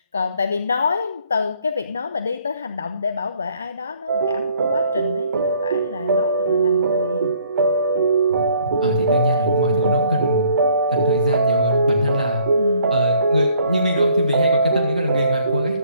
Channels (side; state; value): both; inverted; correlation -0.62